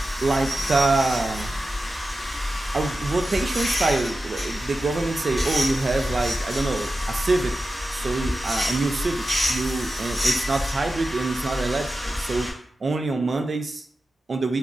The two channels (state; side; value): normal; both; correlation 0.93